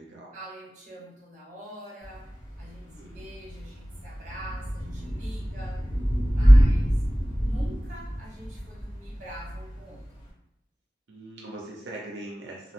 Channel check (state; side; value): normal; both; correlation 0.98